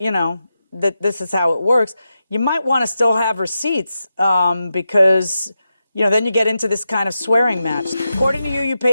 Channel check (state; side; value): inverted; both; correlation -0.89